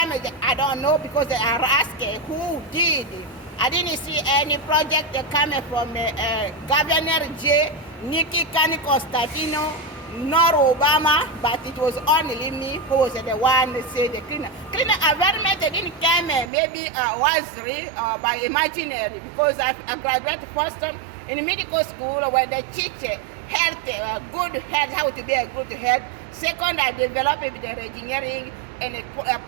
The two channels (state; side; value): drops out; left; at 16.5 s